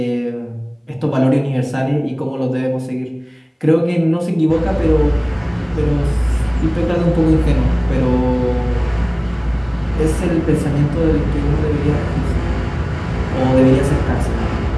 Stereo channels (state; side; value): identical; both; correlation 1.00